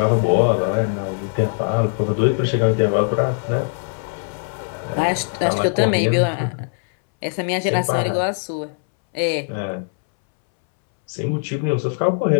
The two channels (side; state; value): right; silent; 64 dB below the other